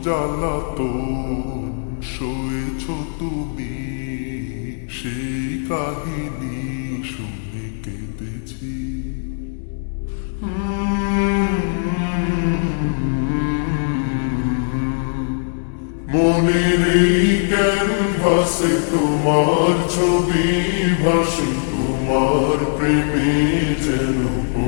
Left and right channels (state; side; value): silent; right; digital silence